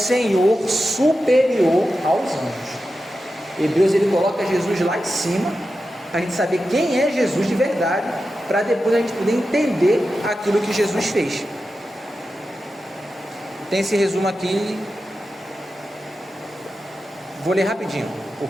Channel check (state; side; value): normal; both; correlation 0.91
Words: superior aos anjos. Hebreus, ele coloca Jesus lá em cima, para a gente saber quem é Jesus de verdade, para depois a gente poder entender aquilo que Jesus fez. Tem esse resumo aqui, vou ler rapidinho,